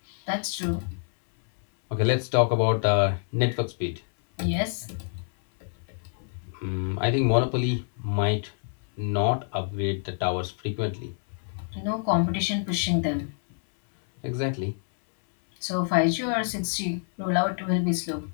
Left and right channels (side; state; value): right; silent; 60 dB below the other